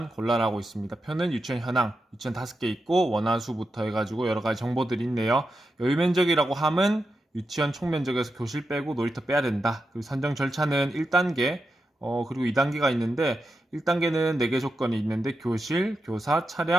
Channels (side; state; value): both; normal; correlation 0.88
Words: 골라라고 있습니다. 표는 유치원 현황, 유치원 5개 있고 원화수부터 해가지고 여러 가지 정보들이 있네요. 여유면적이라고 함은 유치원 총면적에서 교실 빼고 놀이터 빼야 된다. 그리고 선정 절차는 1단계, 그리고 2단계가 있는데 1단계는 4개 조건이 있는데 교실, 교사,